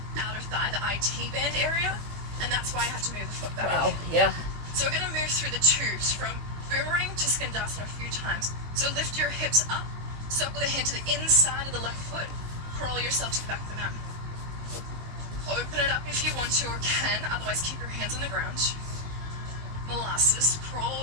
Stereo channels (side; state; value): left; late; 19 ms